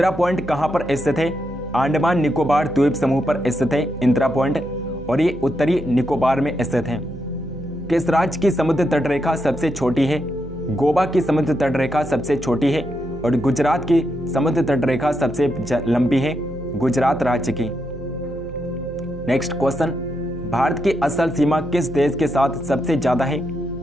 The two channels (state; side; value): noise; right; hum, 15 dB below the sound